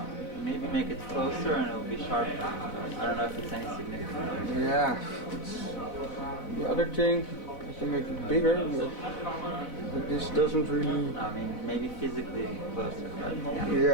Maybe make it closer and it'll be sharper. I don't know if it's any significant. Yeah. The other thing, I can make it bigger, but this doesn't really. I mean, maybe physically closer, but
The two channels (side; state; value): right; late; 4.0 ms